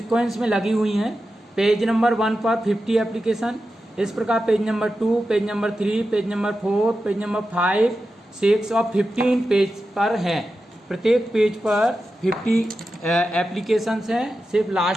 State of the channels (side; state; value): both; normal; correlation 0.91